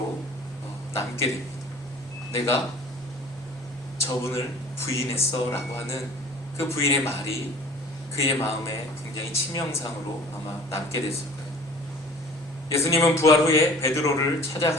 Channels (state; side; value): normal; both; correlation 0.47